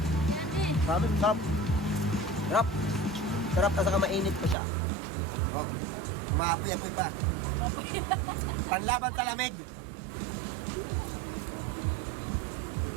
Yan, eh. Promise, sarap. Sarap. Sarap kasi mainit pa siya. Oh, umaapoy-apoy pa. Panlaban sa lamig.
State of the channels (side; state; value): left; drops out; at 4.5 s